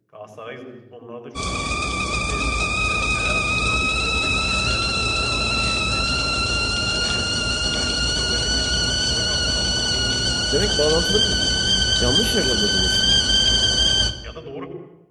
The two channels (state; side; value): identical; both; correlation 1.00